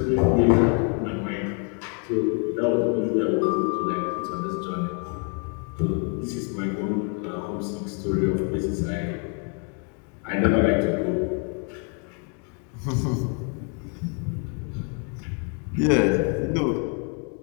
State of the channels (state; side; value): quieter; right; 38.8 dB